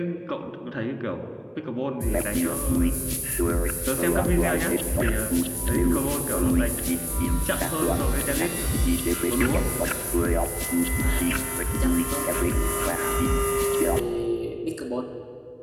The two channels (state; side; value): identical; both; correlation 1.00